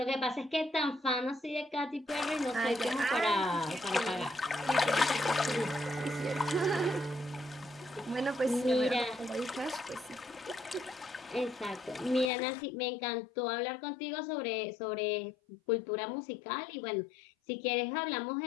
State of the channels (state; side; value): drops out; right; at 12.3 s